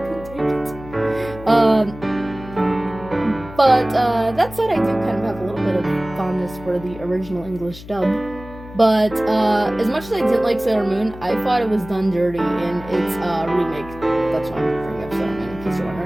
take it. But that said, I do kind of have a little bit of fondness for the original English dub. But as much as I didn't like Sailor Moon, I thought it was done dirty in its remake. That's why I'm bringing up Sailor Moon, in case you're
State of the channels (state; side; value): noise; left; hum, 16 dB below the sound